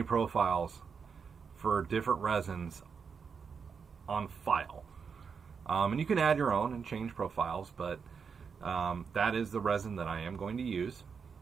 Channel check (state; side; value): quieter; left; 6.0 dB